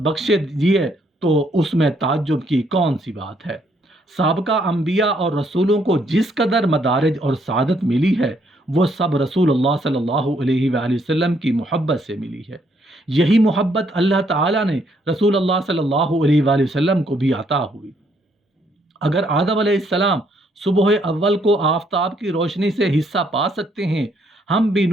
बख्शे दिए तो उसमें ताज्जुब की कौन सी बात है। साबका अंबिया और रसूलों को जिस कदर मदारिज और सादत मिली है, वो सब रसूलुल्लाह सल्लल्लाहु अलैहि वसल्लम की मोहब्बत से मिली है। यही मोहब्बत अल्लाह ताला ने रसूलुल्लाह सल्लल्लाहु अलैहि वसल्लम को भी अता हुई। अगर आदम अलैहिस्सलाम सुबह अव्वल को आफताब की रोशनी से हिस्सा पा सकते हैं, हम भी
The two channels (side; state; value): both; normal; correlation 0.70